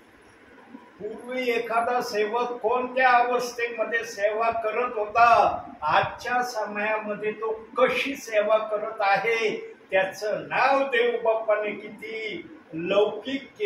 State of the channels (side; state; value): both; identical; correlation 1.00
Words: पूर्वी एखादा सेवक कोणत्या अवस्थेमध्ये सेवा करत होता, आजच्या समयामध्ये तो कशी सेवा करत आहे, त्याचं नाव देव बाप्पाने किती लौकिक